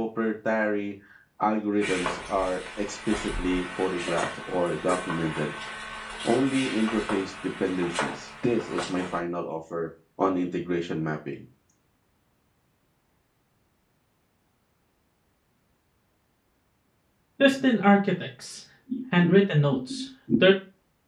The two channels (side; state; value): both; identical; correlation 1.00